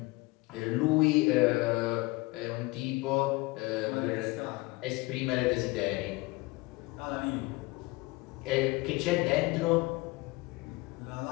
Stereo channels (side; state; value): right; quieter; 23.0 dB